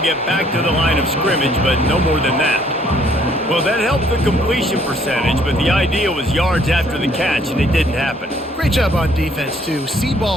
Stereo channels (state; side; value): normal; both; correlation 0.63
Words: get back to the line of scrimmage, but no more than that. Well, that helped the completion percentage, but the idea was yards after the catch, and it didn't happen. Great job on defense, too. See